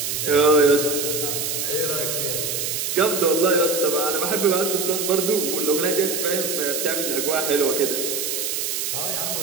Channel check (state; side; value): noise; right; hiss, 2 dB below the sound